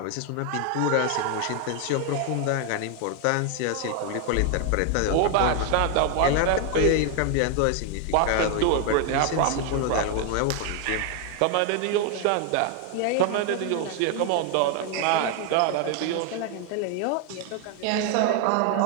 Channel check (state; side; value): different; both; correlation 0.00